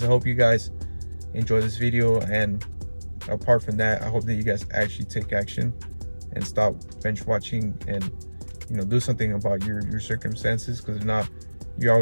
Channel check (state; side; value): inverted; both; correlation -1.00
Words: I hope you guys enjoy this video, and apart from that, I hope that you guys actually take action and stop bench watching, and, you know, do something about your circumstances, because if not, you're